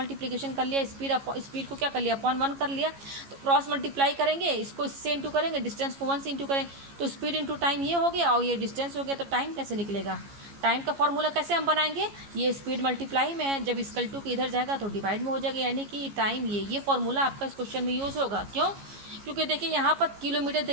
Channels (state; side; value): late; left; 15 ms